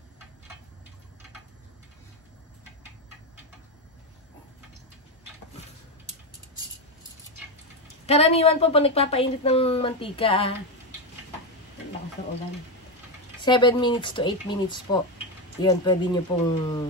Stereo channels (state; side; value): normal; both; correlation 0.10